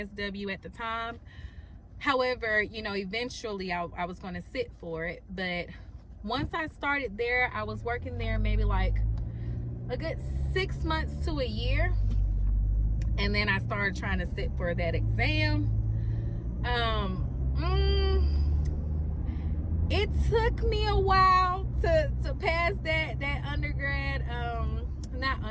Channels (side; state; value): both; identical; correlation 1.00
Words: at the time. However, you know, eventually I was going to sit for it. But once I started there, I was working there maybe like a good 6 months to a year. And then I started trying to sit for that exam. It took me a while to pass that undergrad,